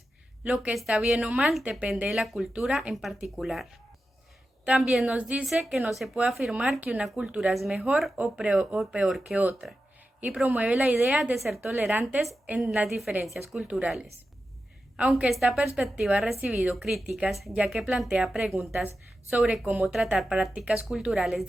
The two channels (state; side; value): normal; both; correlation 0.91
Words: Lo que está bien o mal depende de la cultura en particular. También nos dice que no se puede afirmar que una cultura es mejor o peor que otra, y promueve la idea de ser tolerantes en las diferencias culturales. Aunque esta perspectiva ha recibido críticas, ya que plantea preguntas sobre cómo tratar prácticas culturales